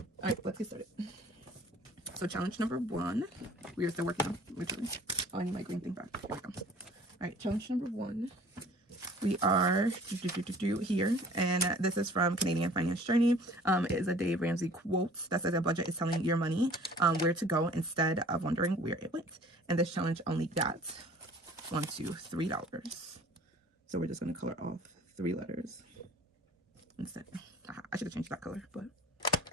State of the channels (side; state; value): both; normal; correlation 0.50